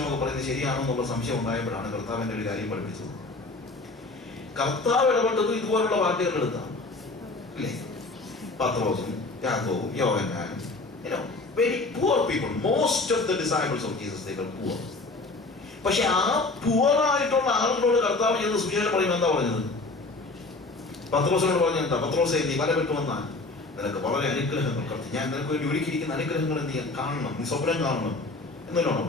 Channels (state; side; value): quieter; right; 3.3 dB